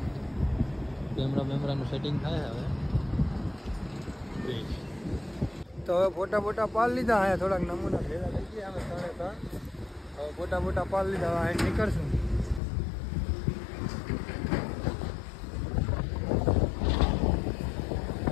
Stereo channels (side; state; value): right; drops out; at 12.6 s